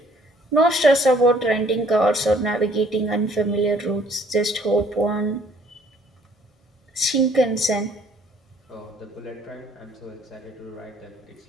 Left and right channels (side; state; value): both; normal; correlation 0.60